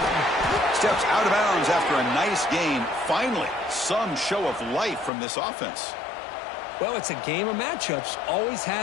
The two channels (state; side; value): drops out; right; at 5.1 s